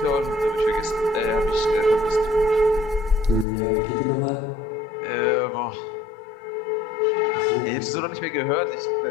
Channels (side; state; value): right; drops out; at 3.5 s